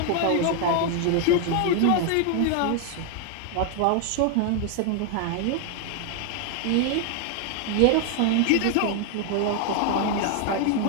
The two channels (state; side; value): different; both; correlation 0.00